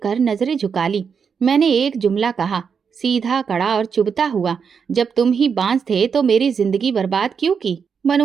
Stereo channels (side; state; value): left; quieter; 6.4 dB